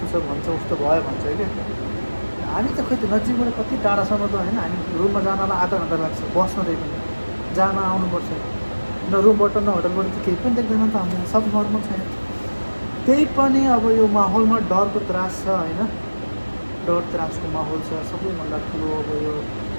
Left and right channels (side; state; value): both; inverted; correlation -1.00